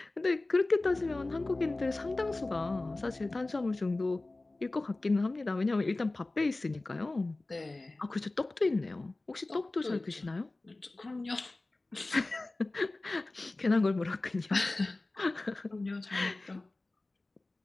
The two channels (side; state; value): right; quieter; 3.0 dB